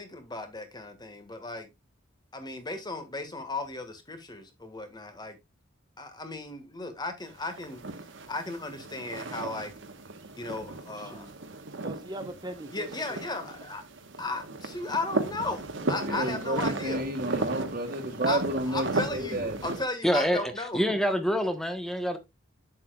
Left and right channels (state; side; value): normal; both; correlation 0.33